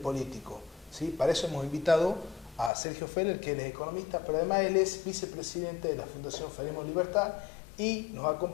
político, ¿sí? Para eso hemos invitado a Sergio Feller, que él es economista, pero además él es vicepresidente de la Fundación Faremos Libertad, y nos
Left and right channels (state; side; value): drops out; right; at 2.7 s